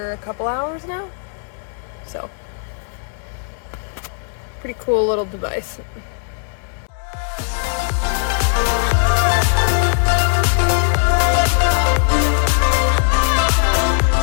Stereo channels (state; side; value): silent; right; digital silence